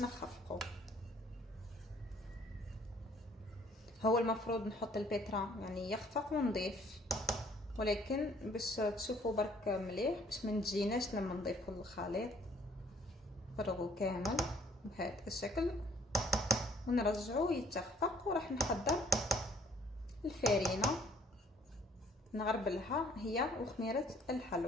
هو المفروض نحط البيترا يعني يخفق ونضيف، ولكن باش تشوفوا برك مليح باش ما نجيناش لما نضيفوا الخليط. فرغوا كامل بهذا الشكل ونرجعوه يتخفق. وراح نحضر الفارينه نغربلها هي وخميره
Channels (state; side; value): normal; both; correlation 0.60